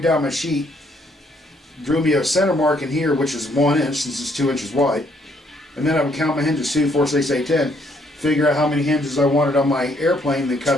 down my sheet. Drew me a center mark in here, which is 1 inch, since it's 2 inches wide. And then I would count my hinges, 2, 4, 6, 8, 10. Figure out how many hinges I wanted on my airplane, and then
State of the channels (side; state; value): both; normal; correlation 0.69